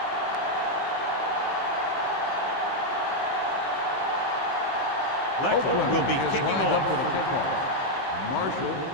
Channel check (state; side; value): late; right; 15 ms